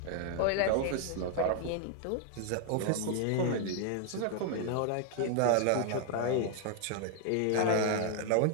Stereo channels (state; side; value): different; both; correlation 0.00